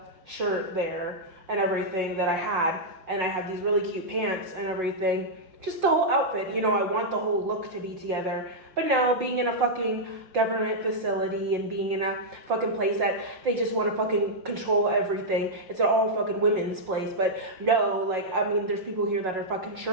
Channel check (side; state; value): left; late; 5.5 ms